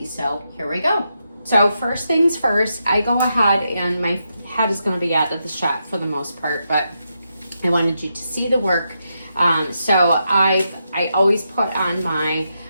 So here we go. So first things first, I go ahead, and my head is going to be out of the shot for the most part, but I wanted you to see the work. So I always put on my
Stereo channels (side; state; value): both; inverted; correlation -0.84